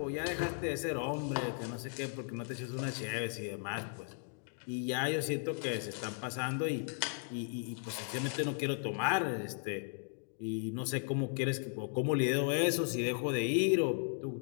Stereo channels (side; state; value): right; silent; 54 dB below the other